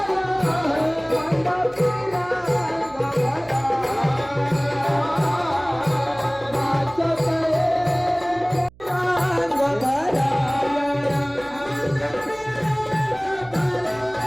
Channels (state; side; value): noise; right; hum, 25 dB below the sound